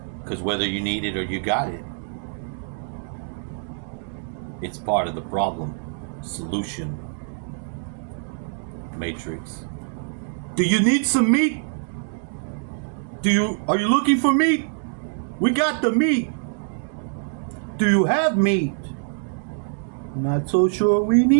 Because whether you need it or you got it, it's part of the problem solution matrix. Do you need some meat? Are you looking for meat? We got the meat. Do you have meat? Not so sure we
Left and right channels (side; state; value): left; silent; 61 dB below the other